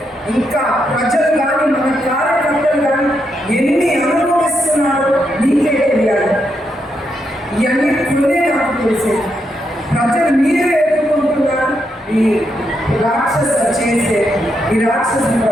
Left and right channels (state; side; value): normal; both; correlation 0.81